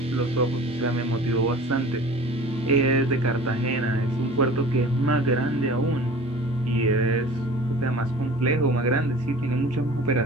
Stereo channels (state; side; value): normal; both; correlation 0.42